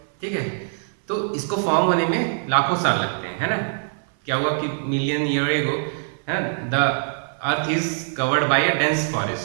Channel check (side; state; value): left; silent; 58 dB below the other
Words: ठीक है, तो इसको फॉर्म होने में लाखों साल लगते हैं, है ना। क्या हुआ कि मिलियन ईयर एगो, है, the earth is covered by a dense